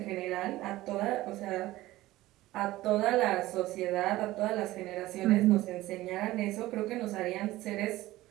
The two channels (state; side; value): quieter; left; 17.0 dB